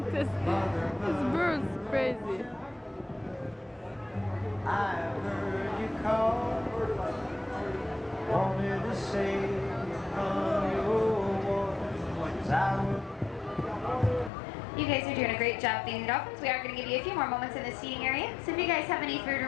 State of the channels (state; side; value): drops out; right; at 14.3 s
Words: This bird's crazy. I heard you call, wanted to say from your voice I would. You guys are doing a great job feeding the dolphins. We are going to give you a few more moments in the seating area. So if you guys have any food